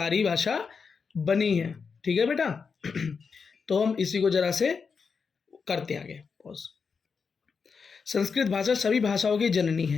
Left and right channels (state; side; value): quieter; right; 5.5 dB